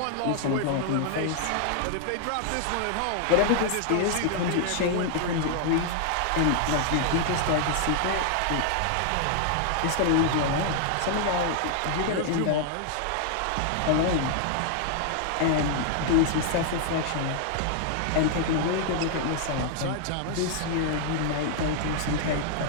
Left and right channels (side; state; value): both; different; correlation 0.00